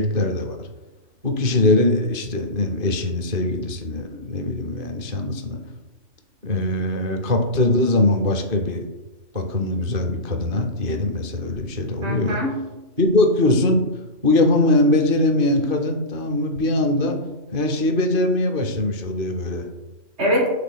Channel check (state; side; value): late; left; 2.5 ms